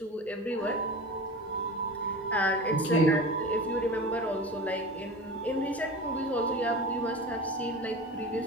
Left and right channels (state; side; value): normal; both; correlation 0.32